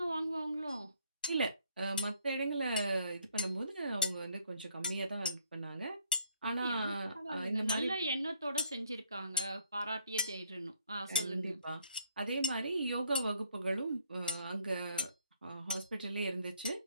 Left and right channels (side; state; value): both; inverted; correlation -0.65